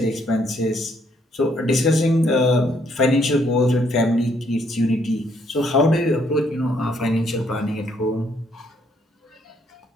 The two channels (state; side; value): normal; both; correlation 0.70